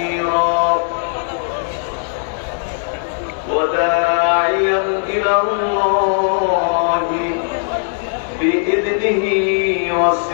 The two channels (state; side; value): silent; right; 67 dB below the other